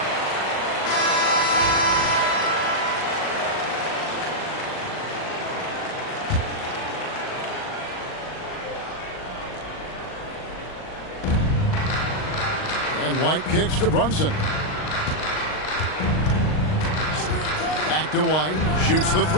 And White kicks to Brunson. Back to White. Shoots the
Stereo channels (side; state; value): right; late; 39 ms